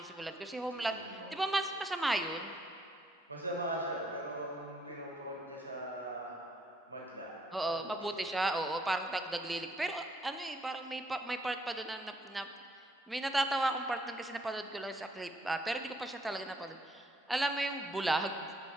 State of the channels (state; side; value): normal; both; correlation 0.68